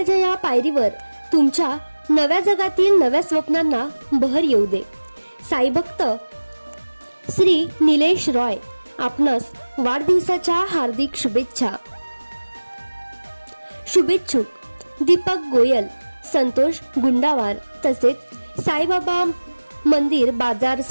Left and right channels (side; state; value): both; inverted; correlation -1.00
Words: या पायरीवर तुमच्या नव्या जगातील नव्या स्वप्नांना बहर येऊ दे। साई भक्त श्री निलेश रॉय आपणास वाढदिवसाच्या हार्दिक शुभेच्छा। शुभेच्छुक दीपक गोयल, संतोष गुंडावार तसेच साईबाबा मंदिर बाजार